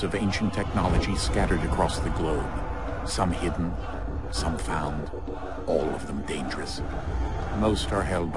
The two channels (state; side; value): identical; both; correlation 1.00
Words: of ancient technology scattered across the globe. Some hidden, some found, all of them dangerous. Most are held